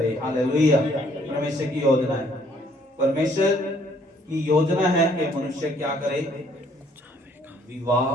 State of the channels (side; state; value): both; normal; correlation 0.64